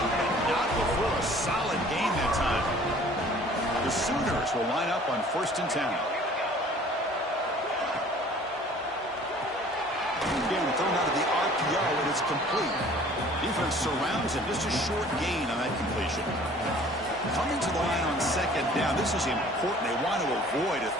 and not before a solid gain that time. The Sooners will line up on 1st and 10. Again, thrown out of the RPO, and it's complete. Defense surrounds him. Just a short gain on that completion. Coming to the line on 2nd down. This is important. They want to avoid a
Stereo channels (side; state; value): both; normal; correlation 0.51